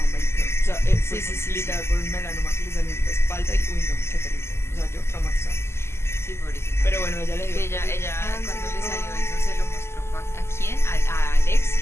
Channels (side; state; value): right; late; 0.12 ms